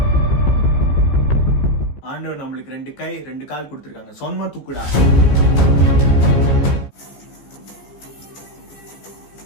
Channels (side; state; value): right; late; 15 ms